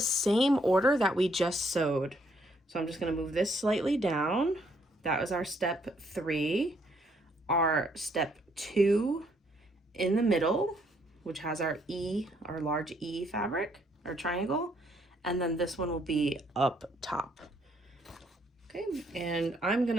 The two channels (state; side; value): normal; both; correlation 0.70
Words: order that we just sewed. So I'm just gonna move this slightly down. That was our step 3. Our step 2 in the middle, which has our E, our large E fabric, our triangle. And then this one will be up top. Okay, and I'm